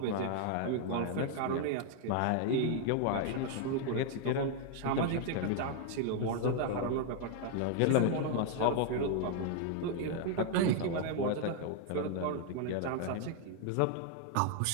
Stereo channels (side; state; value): both; different; correlation 0.00